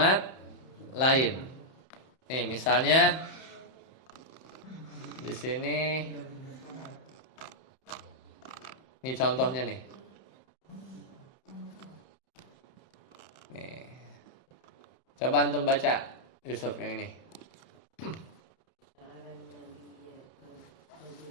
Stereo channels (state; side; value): late; right; 31 ms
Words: lain. Nih, misalnya di sini. Ini contohnya nih. Nih. Coba antum baca Yusuf yang ini.